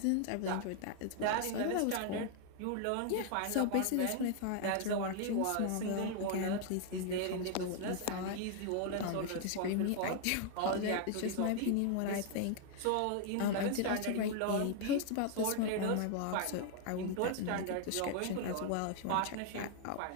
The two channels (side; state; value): both; different; correlation 0.00